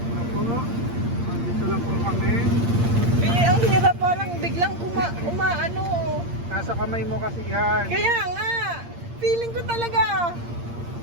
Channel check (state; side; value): late; left; 8.6 ms